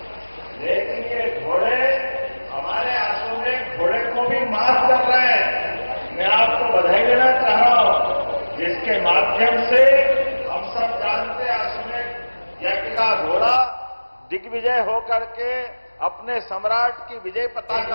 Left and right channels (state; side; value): inverted; both; correlation -1.00